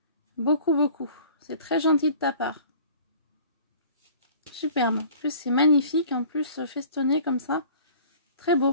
Beaucoup, beaucoup. C'est très gentil de ta part. Superbe. En plus, c'est magnifique. En plus, festonné comme ça. Très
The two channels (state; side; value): inverted; both; correlation -0.48